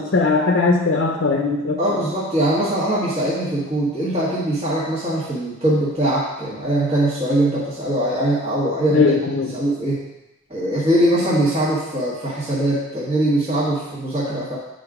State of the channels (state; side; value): normal; both; correlation 0.47